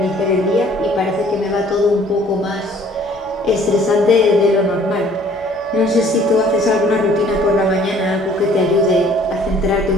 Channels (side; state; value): right; noise; hum, 27 dB below the sound